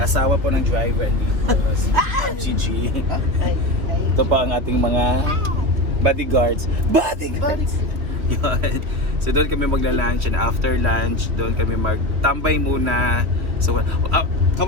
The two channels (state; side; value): late; left; 2.9 ms